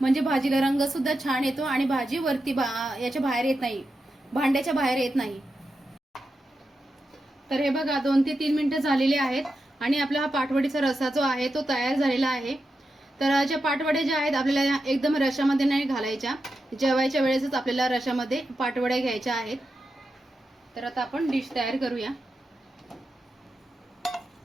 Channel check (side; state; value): both; normal; correlation 0.88